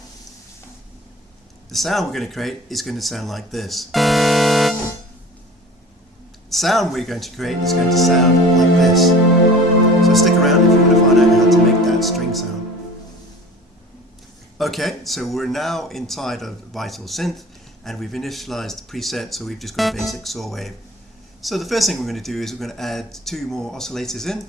The sound we're going to create is going to sound like this. The sound we're going to create is going to sound like this. So stick around if you want to find out how to make that string sound. Okay, so we're now inside of Vital synth, and we've initialized the preset, so we've just got a basic saw wave. So the first thing we're going to do is we're going to add 2 more oscillators in,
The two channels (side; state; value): both; normal; correlation 0.41